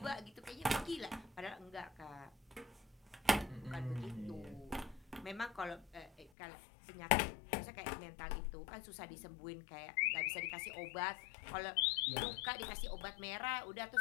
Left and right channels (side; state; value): right; drops out; at 6.3 s